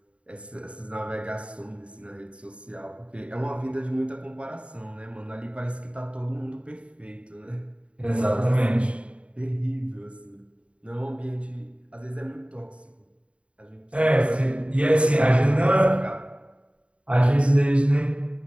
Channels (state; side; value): late; left; 0.060 ms